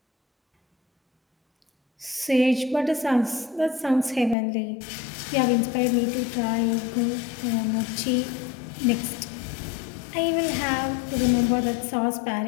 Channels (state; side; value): drops out; right; at 4.4 s